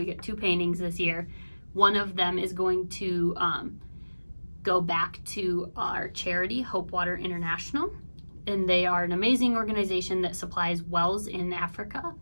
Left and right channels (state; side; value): inverted; both; correlation -1.00